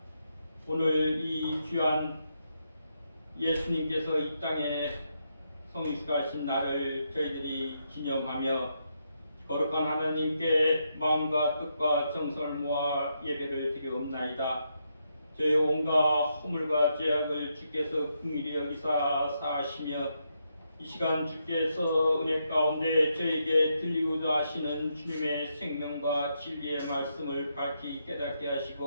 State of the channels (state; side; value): inverted; both; correlation -0.81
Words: 오늘 이 귀한 예수님께서 이 땅에 성육신하신 날을 저희들이 기념하며 거룩한 하나님께 마음과 뜻과 정성을 모아 예배를 드리옵나이다. 저희 온갖 허물과 죄악을 주께서 긍휼히 여기사 사하시며 이 시간 주께서 은혜 가운데 저에게 들리고자 하시는 주님의 생명과 진리의 말씀을 밝히 깨닫게